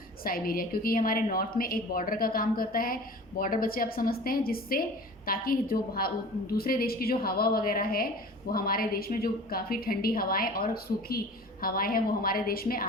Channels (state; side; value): normal; both; correlation 0.40